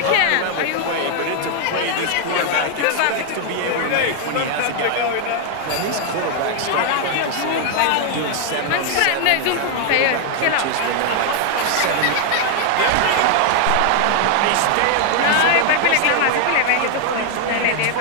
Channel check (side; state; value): both; different; correlation 0.00